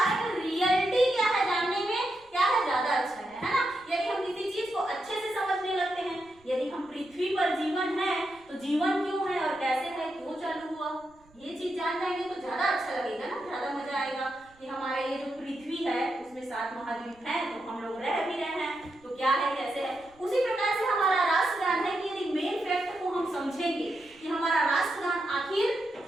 में रियलिटी क्या है जानने में क्या है ज्यादा अच्छा है ना। यदि हम किसी चीज को अच्छे से समझने लगते हैं, यदि हम पृथ्वी पर जीवन है तो जीवन क्यों है और कैसे है, क्यों चालू हुआ, ये चीज जान जाएंगे तो ज्यादा अच्छा लगेगा ना, ज्यादा मजा आएगा कि हमारे ये जो पृथ्वी है उसमें 7 महाद्वीप हैं, तो हम लोग रह भी रहे हैं, तो क्या है कैसे है। उसी प्रकार से हमारा राष्ट्रगान है कि यदि मेन फैक्ट को हम समझेंगे कि हमारा राष्ट्रगान आखिर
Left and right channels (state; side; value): noise; right; rumble, 30 dB below the sound